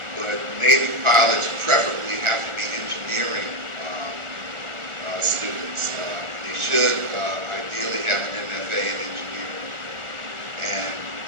But Navy pilots preferably have to be engineering students. They should ideally have an MFA in engineering, and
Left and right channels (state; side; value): late; left; 1.4 ms